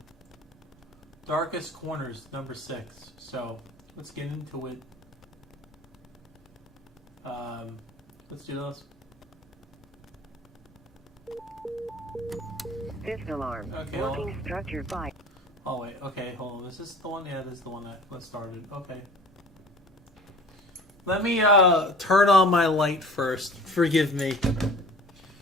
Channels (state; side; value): normal; both; correlation 0.44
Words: Darkest Corners, number 6. So, let's get into it. Let's do this. Fifth alarm. Okay, Working structure 5. Oh wait, okay, hold on. Is this the one? Yeah, this is the one that started. Okay. Let me turn on my light first. Forgive me.